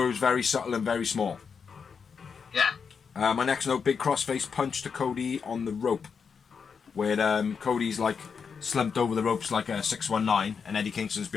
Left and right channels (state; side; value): quieter; right; 6.0 dB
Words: it was very subtle and very small. Yeah. My next note: big crossface punch to Cody on the rope, where Cody's like slumped over the ropes like a 619, and Eddie Kingston's